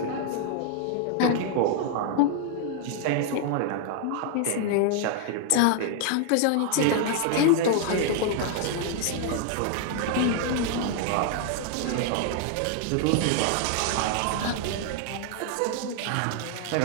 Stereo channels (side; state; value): both; different; correlation 0.00